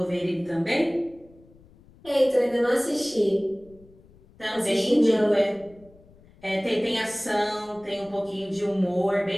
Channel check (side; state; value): left; noise; rumble, 26 dB below the sound